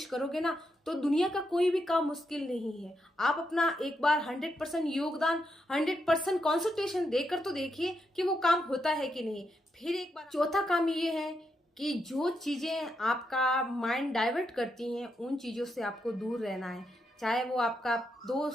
करोगे ना तो दुनिया का कोई भी काम मुश्किल नहीं है। आप अपना एक बार 100% योगदान, 100% कॉन्सेंट्रेशन देकर तो देखिए कि वो काम होता है कि नहीं। फिर एक बार चौथा काम ये है कि जो चीजें आपका माइंड डाइवर्ट करती हैं उन चीजों से आपको दूर रहना है। चाहे वो आपका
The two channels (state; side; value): normal; both; correlation 0.82